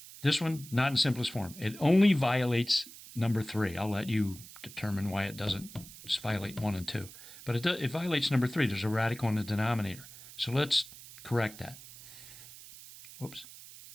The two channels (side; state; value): right; noise; hiss, 17 dB below the sound